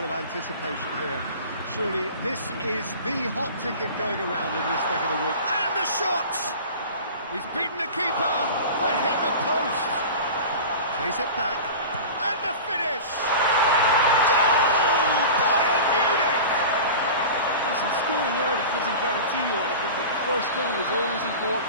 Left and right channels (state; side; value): inverted; both; correlation -0.34